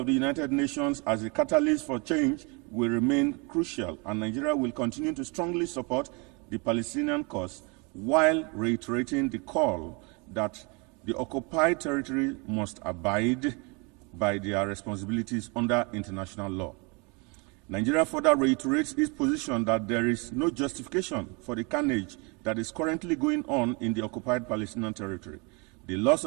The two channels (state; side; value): quieter; left; 30.7 dB